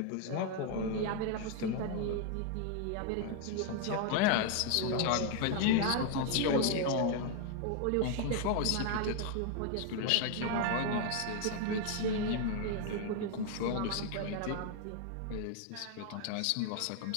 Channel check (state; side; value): different; both; correlation 0.00